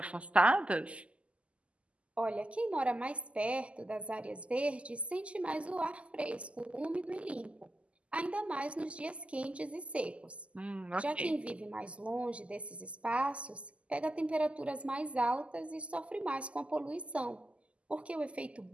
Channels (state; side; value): late; left; 0.059 ms